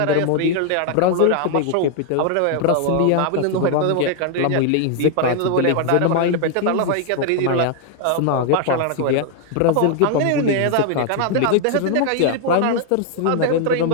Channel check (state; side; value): different; both; correlation 0.00